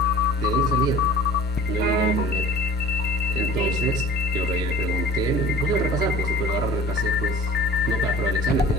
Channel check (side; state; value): both; normal; correlation 0.45